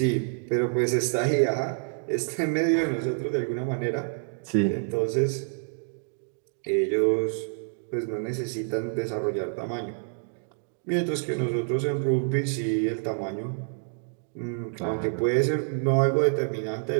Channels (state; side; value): silent; left; digital silence